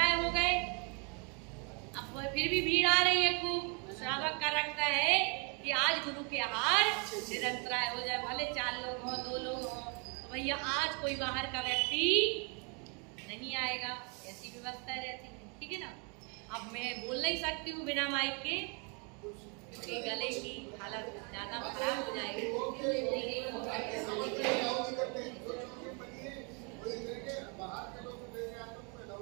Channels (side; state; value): left; quieter; 34.8 dB